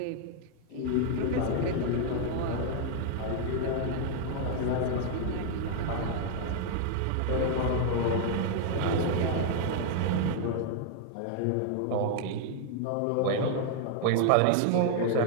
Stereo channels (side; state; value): both; different; correlation 0.00